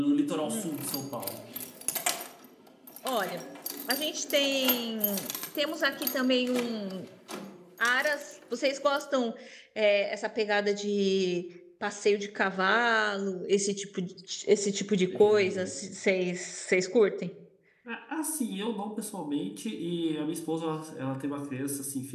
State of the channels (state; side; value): identical; both; correlation 1.00